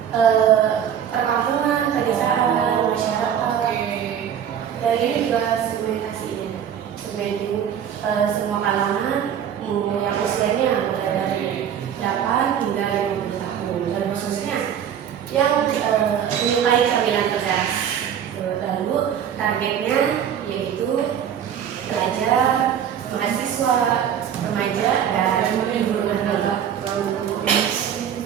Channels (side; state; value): left; quieter; 9.0 dB